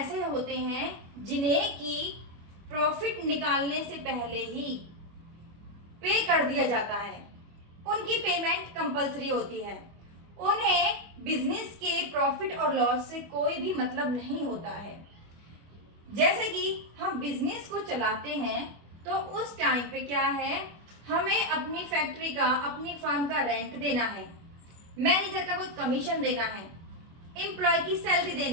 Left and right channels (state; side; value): late; left; 25 ms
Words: होते हैं जिन्हें कि प्रॉफिट निकालने से पहले ही पे कर दिया जाता है, उनकी पेमेंट कंपलसरी होती है, उन्हें बिजनेस के प्रॉफिट और लॉस से कोई भी मतलब नहीं होता है। जैसे कि हम बिजनेस को चलाते हैं तो उस टाइम पे क्या है, हमें अपनी फैक्ट्री का, अपनी फर्म का रेंट देना है, मैनेजर का कुछ कमीशन देना है, एम्प्लॉय की सैलरी